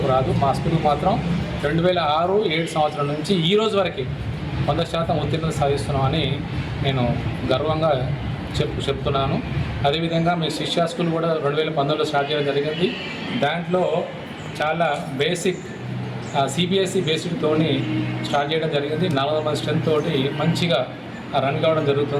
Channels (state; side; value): identical; both; correlation 1.00